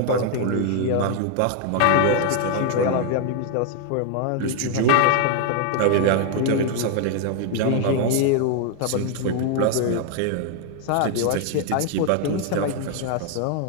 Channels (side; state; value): both; different; correlation 0.00